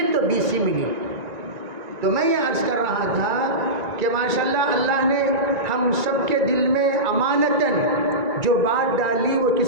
تو 20 ہی منٹ۔ تو میں یہ عرض کر رہا تھا کہ ماشاءاللہ اللہ نے ہم سب کے دل میں امانتاً جو بات ڈالی وہ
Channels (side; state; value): left; late; 1.9 ms